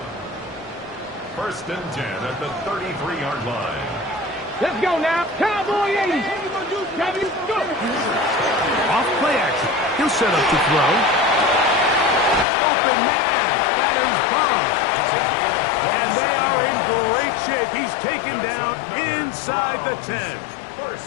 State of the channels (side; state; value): right; drops out; at 12.5 s